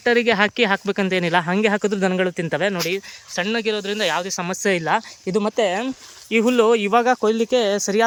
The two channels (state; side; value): identical; both; correlation 1.00